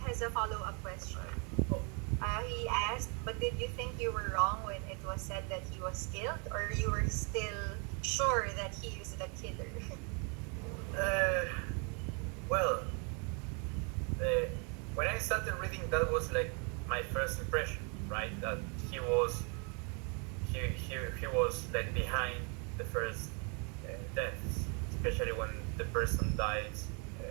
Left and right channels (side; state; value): left; quieter; 35.6 dB